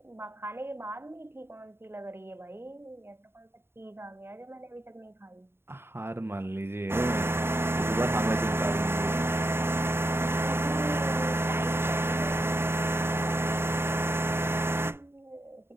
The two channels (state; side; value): late; left; 0.11 ms